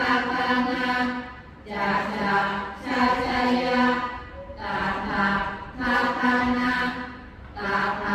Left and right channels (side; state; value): both; identical; correlation 1.00